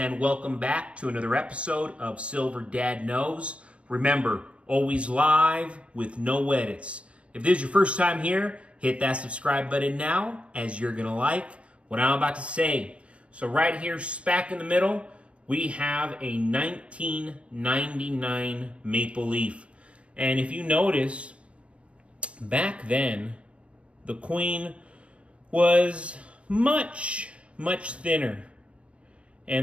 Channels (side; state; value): left; late; 0.062 ms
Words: welcome back to another episode of Silver Dad Knows. Remember, always live with no edits. If this is your first time here, hit that subscribe button now, as you're going to like what I'm about to say. So right here, smack in the middle, we have a 1999 Maple Leaf. And if you notice, back then, the Queen was much thinner.